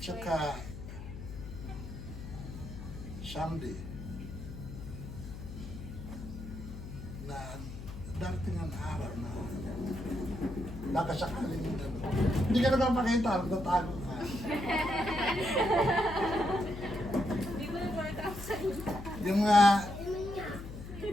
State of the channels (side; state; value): left; noise; hum, 10 dB below the sound